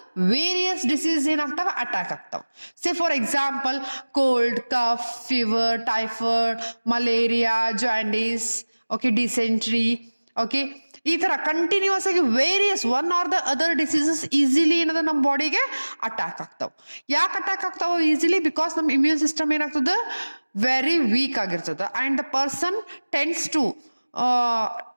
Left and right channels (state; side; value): inverted; both; correlation -1.00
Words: ವೇರಿಯಸ್ ಡಿಸೀಸ್ ಏನಾಗ್ತಾವ? ಅಟ್ಯಾಕ್ ಆಗ್ತಾವ. Say for example cold, cough, fever, typhoid, malaria, jaundice, okay, dysentery, okay, ಈ ತರ ಕಂಟಿನ್ಯೂಸ್ ಆಗಿ various one or the other diseases easily ಏನದ ನಮ್ಮ ಬಾಡಿಗೆ ಅಟ್ಯಾಕ್ ಆಗ್ತಾವ. ಯಾಕೆ ಅಟ್ಯಾಕ್ ಆಗ್ತಾವ ಈಸಿಲಿ? ಬಿಕಾಸ್ ನಮ್ಮ ಇಮ್ಯೂನ್ ಸಿಸ್ಟಮ್ ಏನಾಗ್ತದ? ವೆರಿ ವೀಕ್ ಆಗಿರ್ತದ and the person tends to